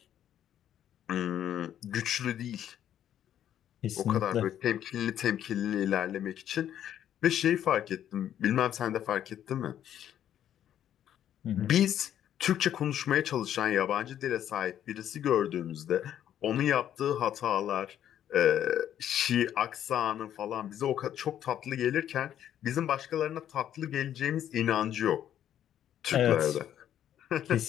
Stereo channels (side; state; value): right; quieter; 10.6 dB